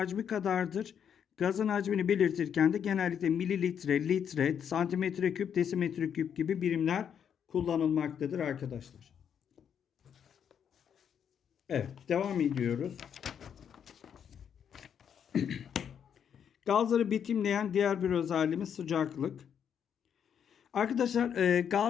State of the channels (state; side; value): quieter; right; 8.2 dB